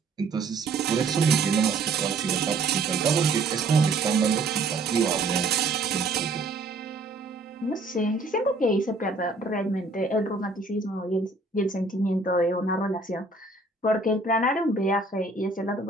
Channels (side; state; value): left; quieter; 3.4 dB